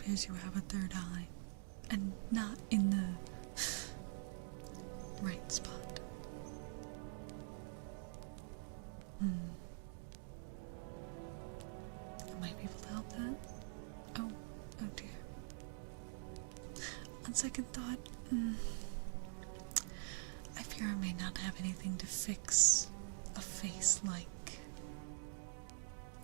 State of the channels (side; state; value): left; silent; digital silence